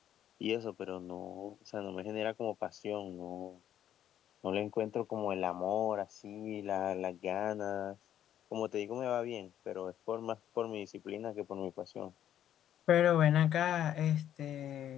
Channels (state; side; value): quieter; right; 10.8 dB